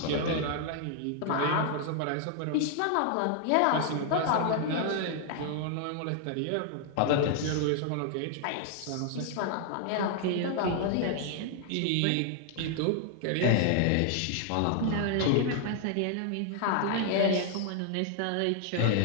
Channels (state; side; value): different; both; correlation 0.00